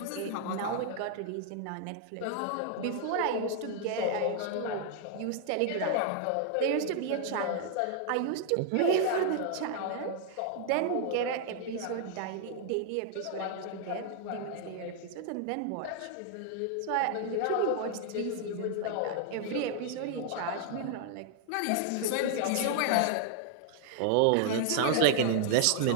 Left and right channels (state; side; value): different; both; correlation 0.00